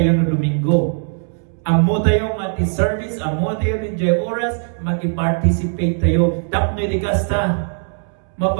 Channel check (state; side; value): silent; left; 66 dB below the other